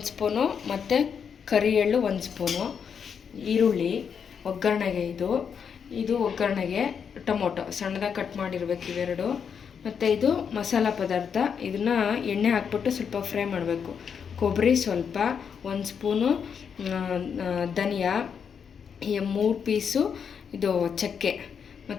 ಸ್ಪೂನು ಮತ್ತು ಕರಿ ಎಳ್ಳು 1 ಸ್ಪೂನು, ಈರುಳ್ಳಿ ಒಗ್ಗರಣೆಗೆ, ಇದು ಒಗ್ಗರಣೆಗೆ, ಟೊಮೊಟೊ ಸಣ್ಣದಾಗಿ ಕಟ್ ಮಾಡಿರ್ಬೇಕು ಇವೆರಡು, ಮತ್ತು ಇದು ಮಸಾಲ ಪದಾರ್ಥ. ಇದನ್ನು ಎಣ್ಣೆ ಹಾಕ್ಬಿಟ್ಟು ಸ್ವಲ್ಪ ಫ್ರೈ ಮಾಡಬೇಕು. ಕೊಬ್ಬರಿ ಸ್ವಲ್ಪ, 1 ಸ್ಪೂನು ಧನಿಯಾ, 3 ಪೀಸು ಇದು ಚಕ್ಕೆ,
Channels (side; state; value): right; quieter; 7.0 dB